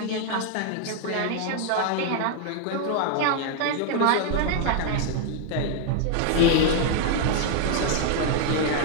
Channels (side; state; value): both; different; correlation 0.00